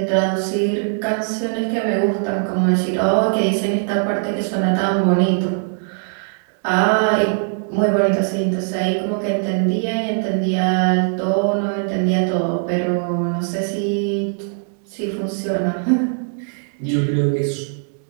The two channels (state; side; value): silent; left; 64 dB below the other